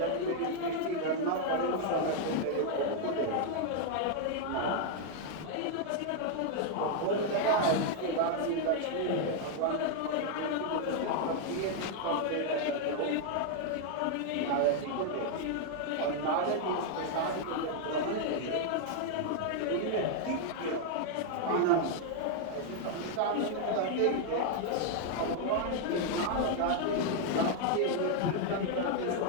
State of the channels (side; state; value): both; different; correlation 0.00